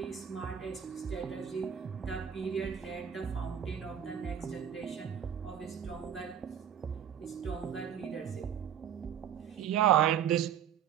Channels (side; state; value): left; quieter; 8.9 dB